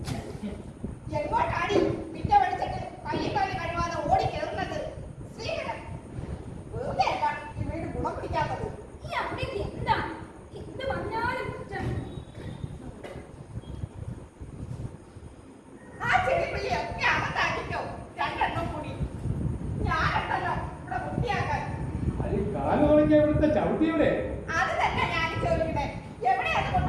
എങ്ങോട്ടാടി പിറ്റ പഠിച്ചിട്ട് കയ്യും കാലും കഴുകാതെ ഓടി കയറുന്നത്? ശ്രീകരൻ, വെറുതെ അല്ല ഈ വീട് ഗുണം പിടിക്കാത്തത്. ഈ അമ്മയ്ക്ക് എന്താ എന്ത് പറഞ്ഞാലും കുറ്റം. ആ ചെടിപ്പള്ളി ഒക്കെ അകത്താക്കിക്കോ, 2 എണ്ണം കൂടി. ഞാനുണ്ടല്ലോ ഇവിടെ വൃത്തിയാക്കാൻ. അത് കാല് തുടങ്ങിയ ഇവിടുത്തെ ചവിട്ടിയുടെ. അത് തന്നെ ഞാൻ ചോദിക്കണേ, എവിടെയാണ്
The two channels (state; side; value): identical; both; correlation 1.00